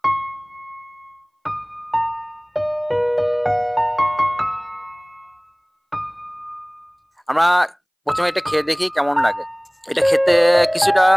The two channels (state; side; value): identical; both; correlation 1.00